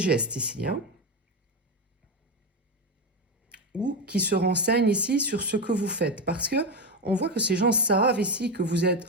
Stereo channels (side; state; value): both; normal; correlation 0.13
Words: ici, hein, ou qui se renseignent ici sur ce que vous faites. Parce que on voit que ces gens savent ici que vous